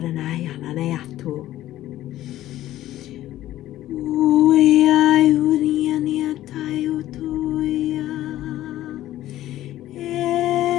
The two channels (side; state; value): right; quieter; 14.2 dB